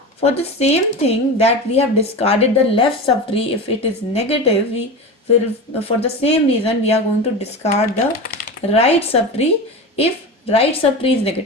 for the same thing that we have discarded the left subtree, if it is negative, we will, for the same reason, we are going to discard the right subtree if right subtree is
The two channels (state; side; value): normal; both; correlation 0.26